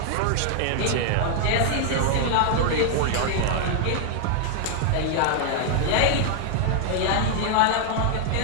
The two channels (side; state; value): both; different; correlation 0.00